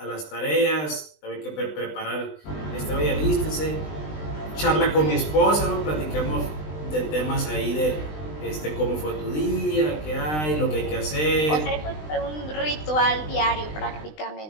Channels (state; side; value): late; right; 20 ms